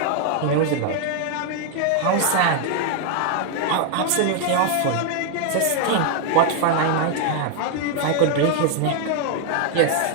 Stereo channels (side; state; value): both; different; correlation 0.00